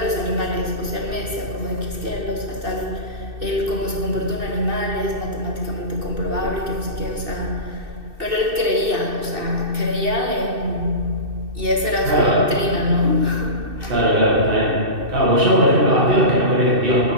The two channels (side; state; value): left; late; 2.6 ms